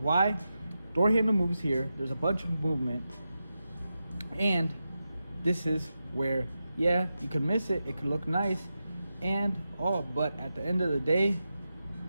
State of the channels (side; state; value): both; inverted; correlation -0.90